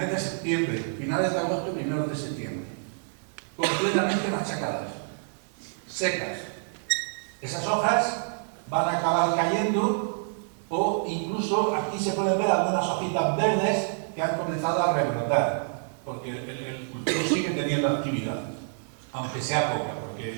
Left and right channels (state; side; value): silent; left; digital silence